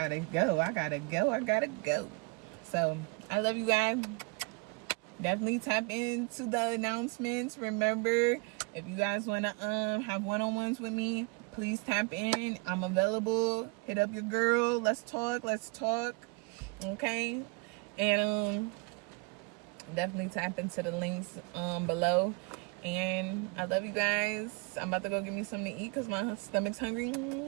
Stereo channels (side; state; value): left; quieter; 29.6 dB